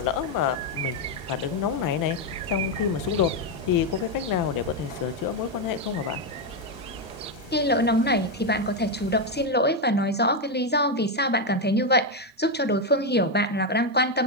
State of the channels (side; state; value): both; normal; correlation 0.05